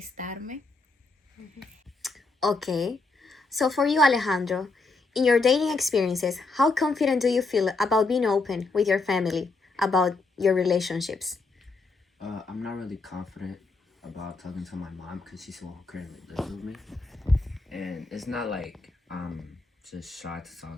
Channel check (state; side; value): quieter; right; 3.7 dB